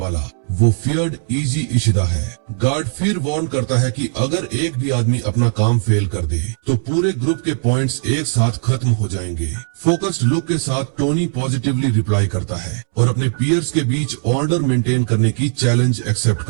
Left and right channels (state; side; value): silent; left; 67 dB below the other